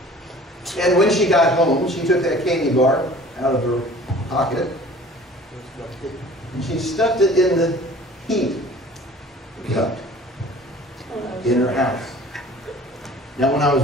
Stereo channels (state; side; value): normal; both; correlation 0.47